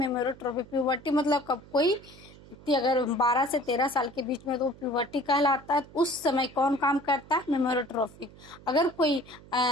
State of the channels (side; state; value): right; noise; hum, 21 dB below the sound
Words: प्यूबर्टी मतलब कब कोई व्यक्ति अगर 12 से 13 साल के बीच में तो प्यूबर्टी कहलाता है। उस समय कौन काम करता है, मेमोरोट्रोपिक। अगर कोई